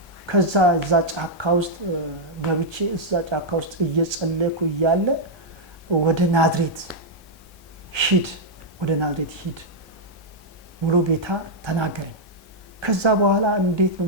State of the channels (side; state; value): both; normal; correlation -0.04